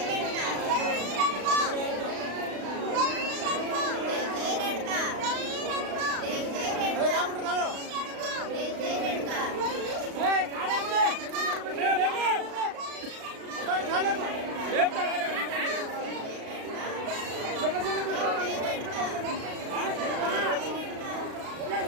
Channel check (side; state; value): left; late; 36 ms